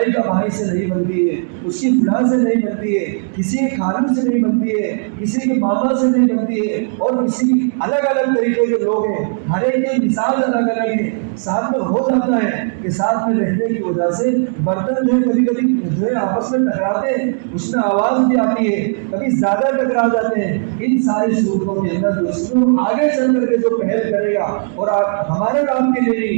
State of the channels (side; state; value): left; silent; 68 dB below the other